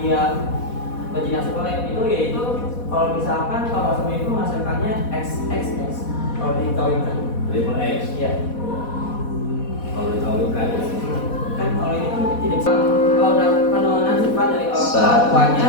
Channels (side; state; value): right; late; 4.1 ms